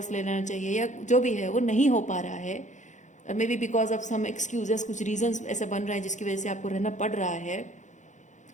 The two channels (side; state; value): right; late; 0.35 ms